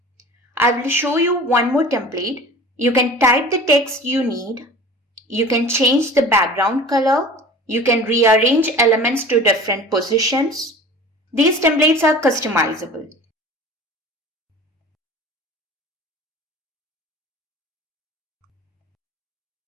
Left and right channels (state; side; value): normal; both; correlation 0.40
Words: I will show you one more template. You can type the text you need. You can change the background color. You can rearrange elements to different positions. These templates are customizable.